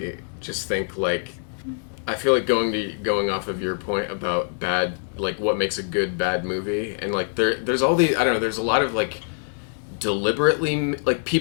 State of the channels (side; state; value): right; silent; digital silence